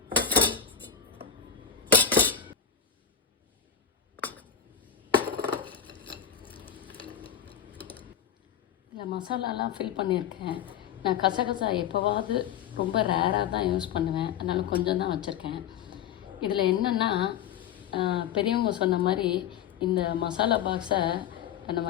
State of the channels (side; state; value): right; quieter; 8.5 dB